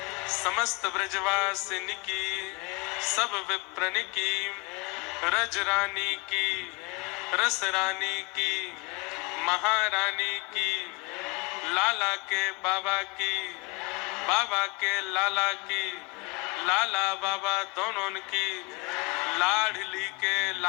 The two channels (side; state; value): right; quieter; 28.7 dB